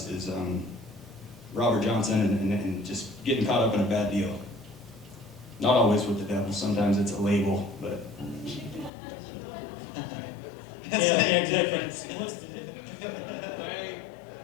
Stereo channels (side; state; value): right; drops out; at 8.9 s